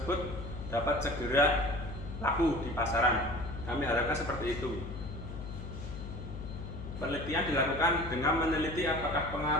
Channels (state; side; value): noise; left; hum, 9 dB below the sound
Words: dapat segera laku di pasaran. Kami harapkan seperti itu. Penelitian dilakukan dengan meneliti apakah